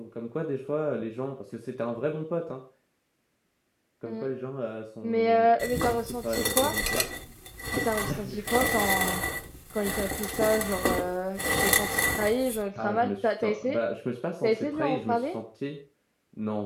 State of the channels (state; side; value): identical; both; correlation 1.00